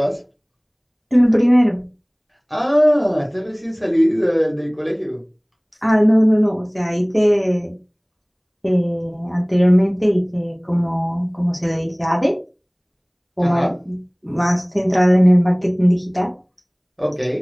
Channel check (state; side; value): identical; both; correlation 1.00